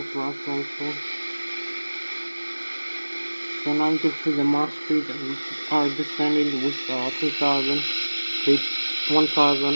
thrust also. So now you can see the Mach speed which are descending with 3,000 feet,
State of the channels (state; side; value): inverted; both; correlation -1.00